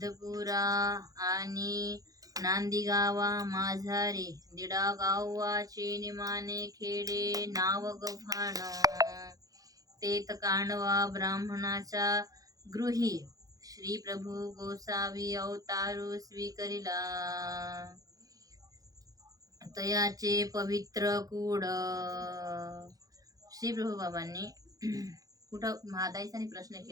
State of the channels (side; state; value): left; late; 0.17 ms